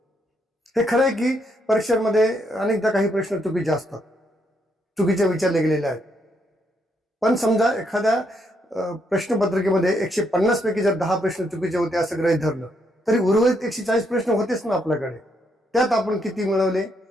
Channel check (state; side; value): normal; both; correlation 0.76